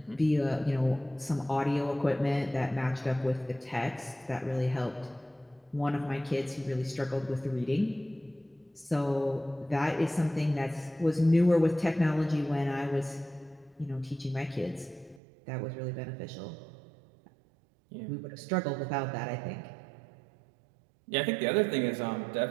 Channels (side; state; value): left; drops out; at 15.2 s